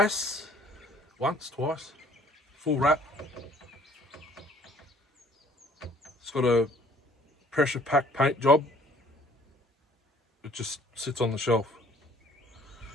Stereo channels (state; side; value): normal; both; correlation 0.57